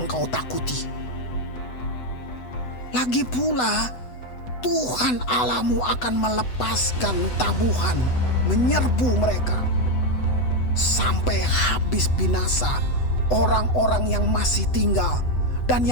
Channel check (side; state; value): right; late; 8.0 ms